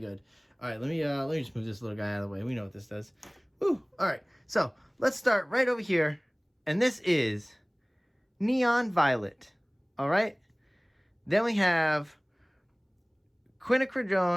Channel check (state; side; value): identical; both; correlation 1.00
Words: good. All right, let me just move this little guy out of the way. We know what this does. Woo! All right, so let's start right over here. And this is Neon Violet. All right. Then we have